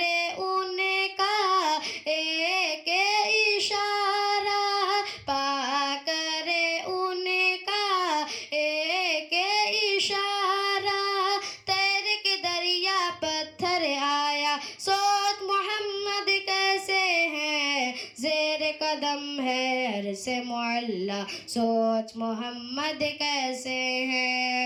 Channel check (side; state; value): both; identical; correlation 1.00